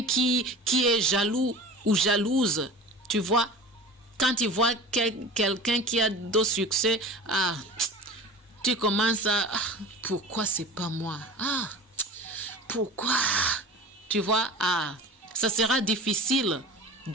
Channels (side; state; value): both; normal; correlation 0.36